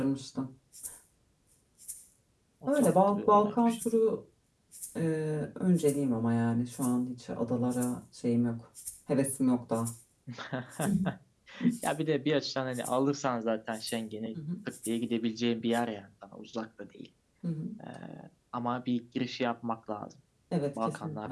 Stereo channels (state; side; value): identical; both; correlation 1.00